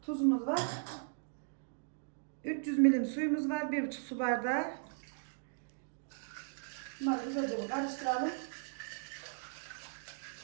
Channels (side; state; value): left; silent; digital silence